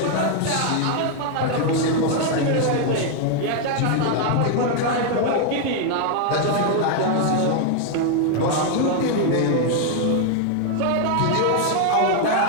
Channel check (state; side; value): different; both; correlation 0.00